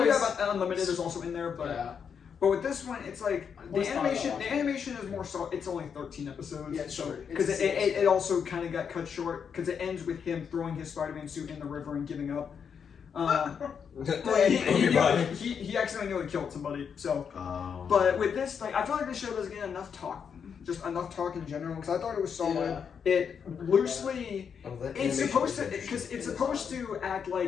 Unlimited is also in there, but Yeah. but with this one, it's like the always thought about animation. The watching animation is more so. It's only 13 episodes. Yeah, it's short. Because It's it also kind of got cut short because it ends with him throwing his Spider-Man suit in the river and giving up. He accidentally nearly killed somebody. So, but with this, like, I feel like this show doesn't get enough talk, just enough talk in general. Because I thought it was solid. Yeah. It loosely, that it's animation supposed to, is because it's supposed to act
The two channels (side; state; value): right; quieter; 7.0 dB